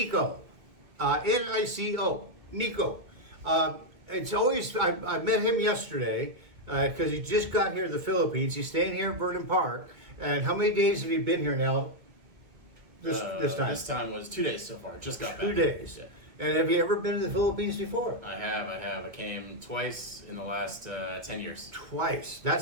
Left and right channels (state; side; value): late; left; 2.3 ms